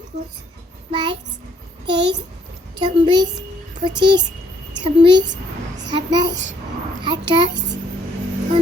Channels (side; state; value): both; normal; correlation 0.67